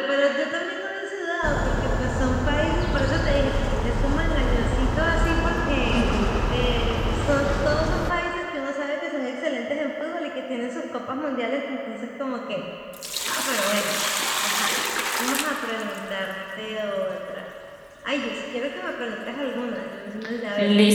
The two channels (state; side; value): identical; both; correlation 1.00